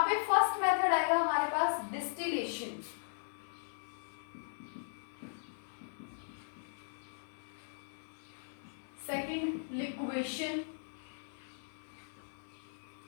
पे फर्स्ट मेथड आएगा हमारे पास distillation. Second liquation,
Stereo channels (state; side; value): silent; right; digital silence